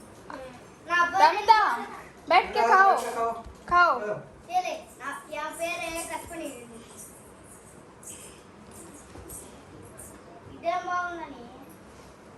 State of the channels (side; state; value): both; identical; correlation 1.00